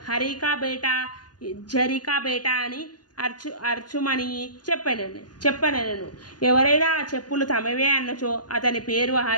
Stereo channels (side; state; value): right; late; 0.69 ms